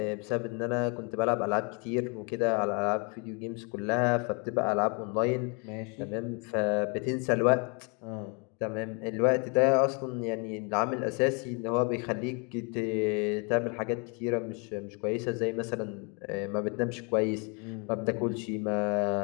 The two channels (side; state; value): right; quieter; 34.0 dB